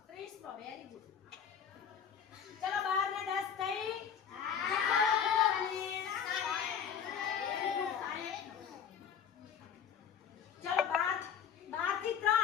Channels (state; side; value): quieter; right; 7.9 dB